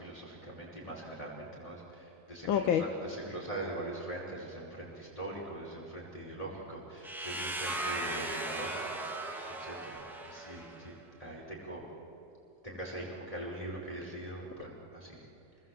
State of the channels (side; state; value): both; normal; correlation 0.08